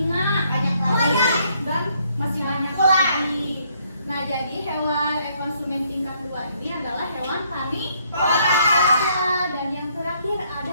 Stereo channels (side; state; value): both; inverted; correlation -0.69